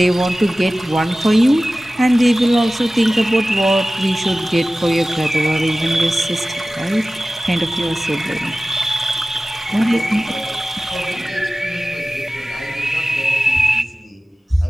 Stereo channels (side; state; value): both; normal; correlation 0.96